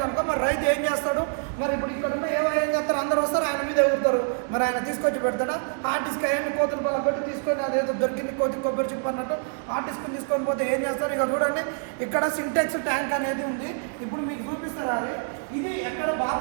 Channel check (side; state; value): left; silent; 61 dB below the other